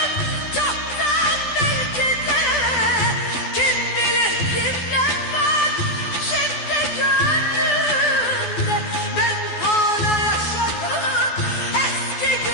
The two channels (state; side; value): late; right; 12 ms